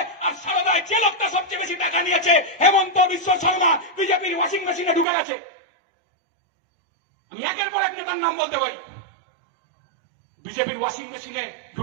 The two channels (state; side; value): drops out; left; at 5.1 s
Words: আর সারদায় যে লোকটা সবচেয়ে বেশি টাকা নিয়েছে হেমন্ত বিশ্ব শর্মা বিজেপির ওয়াশিং মেশিনে ঢুকে গেছে। আমি একের পর এক নেতার নাম বলতে পারি। বিজেপির ওয়াশিং মেশিনে